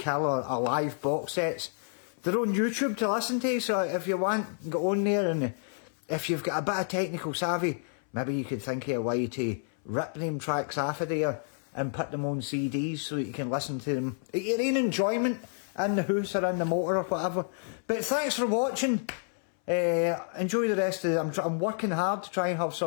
or live box sets, they're on YouTube to listen to. So if you want, go on there, and if you've got a bit of technical savvy, maybe you could think of a way to rip them tracks off of there and put them on CDs so that you can listen to them at your own enjoyment in the house or in the motor or whatever. But thanks for watching. Enjoy the rest of it. I'm working hard to try and have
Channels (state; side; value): silent; right; 58 dB below the other